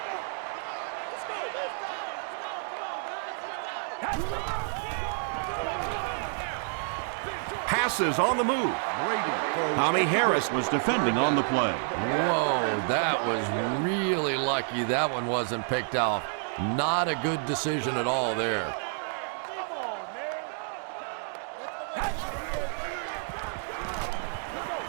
Passes on the move. Tommy Harris was defending on the play. Whoa, that was really lucky that one wasn't picked off. Not a good decision at all there.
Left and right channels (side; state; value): left; silent; 58 dB below the other